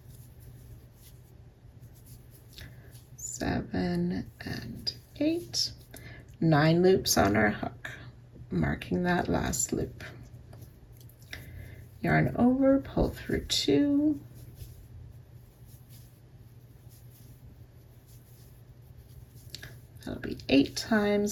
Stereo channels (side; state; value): both; identical; correlation 1.00